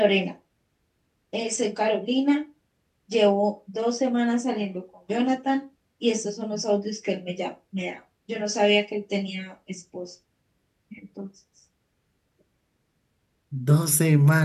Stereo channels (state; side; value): identical; both; correlation 1.00